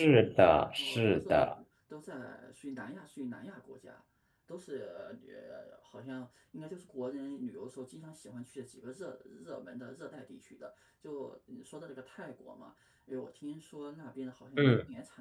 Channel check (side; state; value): both; identical; correlation 1.00